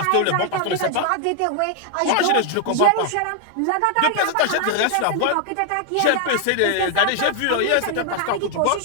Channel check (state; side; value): different; both; correlation 0.00